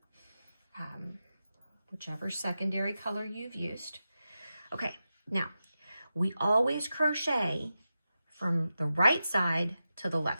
whichever secondary color you've used. Okay, now we always crochet from the right side to the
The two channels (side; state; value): both; inverted; correlation -0.91